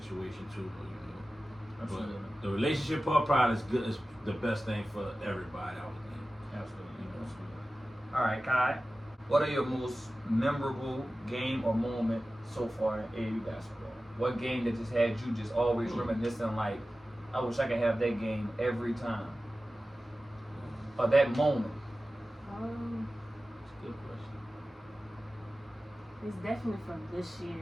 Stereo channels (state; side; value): normal; both; correlation 0.95